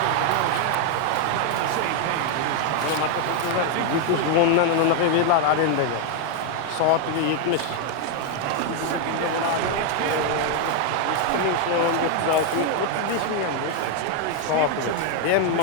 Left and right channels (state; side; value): different; both; correlation 0.00